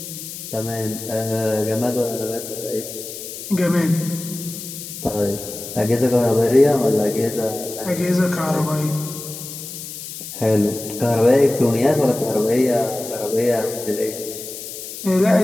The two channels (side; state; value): left; noise; hiss, 10 dB below the sound